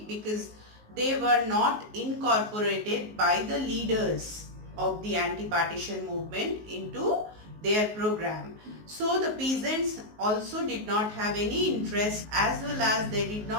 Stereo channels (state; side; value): late; left; 19 ms